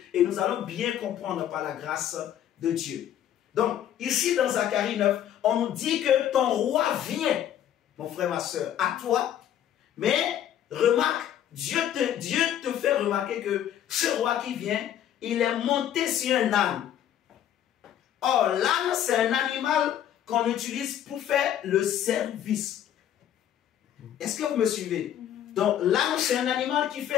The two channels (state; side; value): quieter; right; 10.7 dB